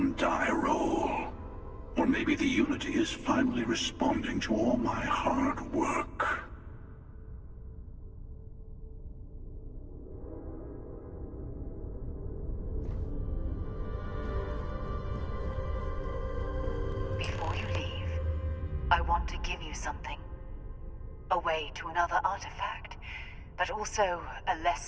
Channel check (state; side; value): identical; both; correlation 1.00